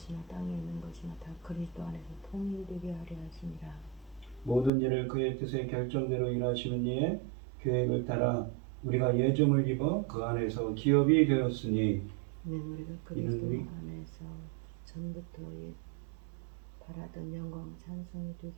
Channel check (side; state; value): left; drops out; at 4.7 s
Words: 땅에 있는 것이나 다 그리스도 안에서 통일되게 하려 하심이라. 모든 일을 그의 뜻의 결정대로 일하시는 이의 계획을 따라 우리가 예정을 입어 그 안에서 기업이 되었으니 이는 우리가 그리스도 안에서 전부터 바라던 영광 찬송이